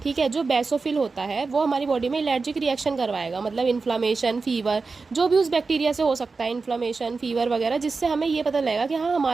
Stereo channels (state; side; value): quieter; left; 4.3 dB